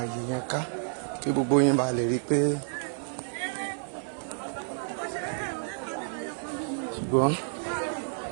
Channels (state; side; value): silent; left; 58 dB below the other